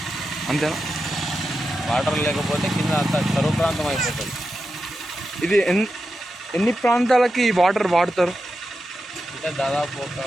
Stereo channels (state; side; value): normal; both; correlation 0.89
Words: అంతేనా? వాటర్ లేకపోతే కింద అంతా కరువు ప్రాంతం అయిపోతుంది. ఇది ఎన్ని ప్రాంతాలకి ఈ వాటర్ వాడతారు? అంటే దాదాపు ఒక